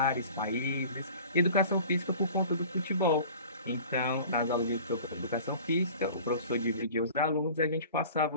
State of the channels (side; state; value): both; inverted; correlation -0.43